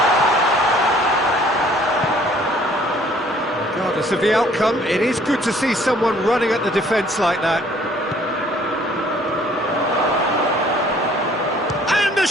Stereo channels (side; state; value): both; normal; correlation 0.57